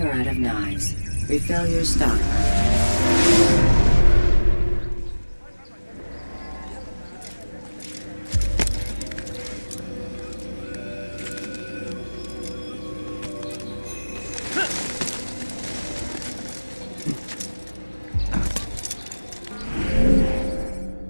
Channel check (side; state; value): both; inverted; correlation -1.00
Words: out of knives, refill your stock.